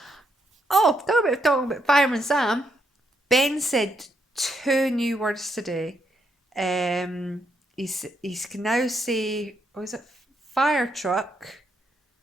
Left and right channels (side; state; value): both; normal; correlation 0.77